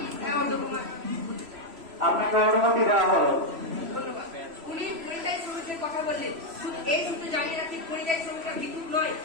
আপনাকে অনুমতি দেওয়া হলো। উনি পরিযায়ী শ্রমিকের কথা বললেন, এই সূত্রে জানিয়ে রাখি পরিযায়ী শ্রমিকরা বিদ্যুৎ নয়,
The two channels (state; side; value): late; left; 3.0 ms